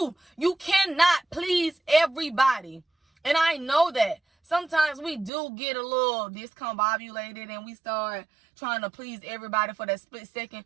You cannot please everybody. And I know that sometimes we do get a little discombobulated and we start trying to please everybody for that split second.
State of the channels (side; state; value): left; drops out; at 5.3 s